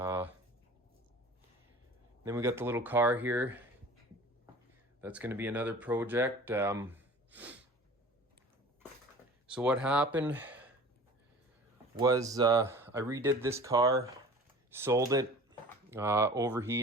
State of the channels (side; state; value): both; normal; correlation 0.42